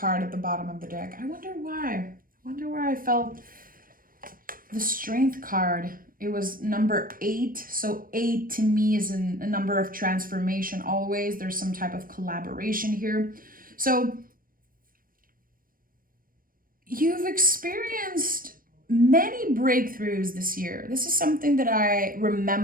at the bottom of the deck. I wonder why. I felt the Strength card. It was number 8. So 8 to me is a number of transformation always. There's some type of collaboration here. So you've experienced many breakthroughs this year. This is something that I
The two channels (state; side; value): late; left; 0.41 ms